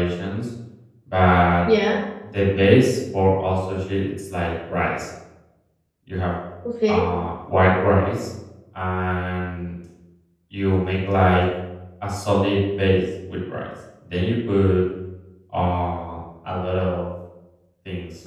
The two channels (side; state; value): both; identical; correlation 1.00